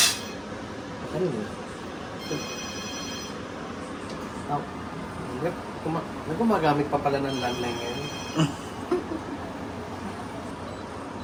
Ano yun? Gumagamit pa pala ng landline ngayon.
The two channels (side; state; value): both; identical; correlation 1.00